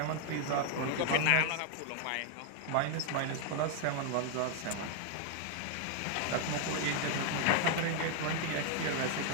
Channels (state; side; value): different; both; correlation 0.00